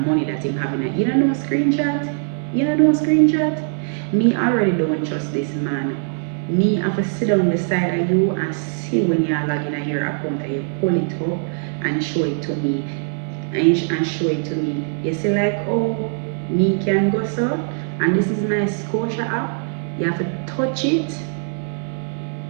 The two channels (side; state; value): left; silent; 58 dB below the other